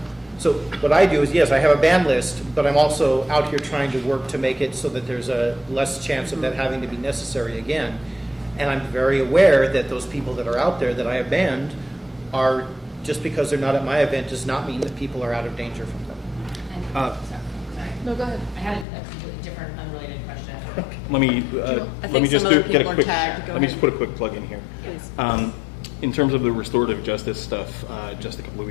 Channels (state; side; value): drops out; right; at 18.9 s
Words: So what I do is, yes, I have a ban list, but I'm also out here trying to work to make it so that there's a less chance of that having to be necessary again. And I'm very aware that those people that are out there that I have banned are, just because they're not at my event does not mean that people are out of danger from them. Sorry. No, go ahead. I had a completely different, unrelated question. Let me I let think me just some other get a people are quick. tagged. Go Let me ahead. just put a quick plug in here. Please. In terms of the restorative justice stuff, just a couple of